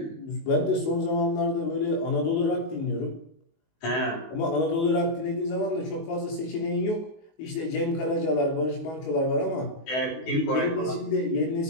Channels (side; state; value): right; late; 19 ms